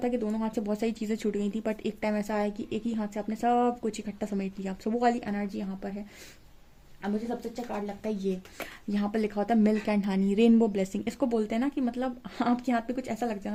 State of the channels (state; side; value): identical; both; correlation 1.00